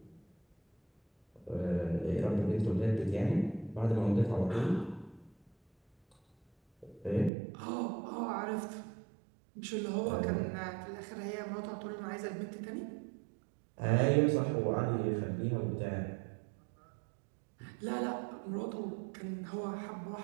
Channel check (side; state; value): left; drops out; at 7.3 s